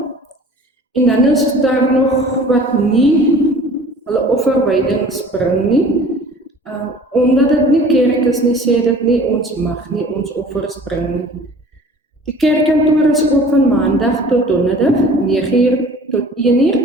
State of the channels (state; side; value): normal; both; correlation 0.47